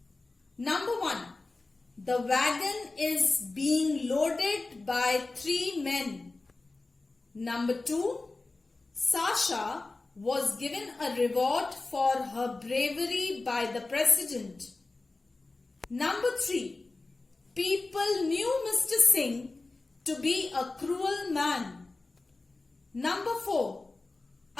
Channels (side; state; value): right; quieter; 3.4 dB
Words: Number 1. The wagon is being loaded by 3 men. Number 2. Sasha was given a reward for her bravery by the president. Number 3. People knew Mr. Singh to be a cruel man. Number 4.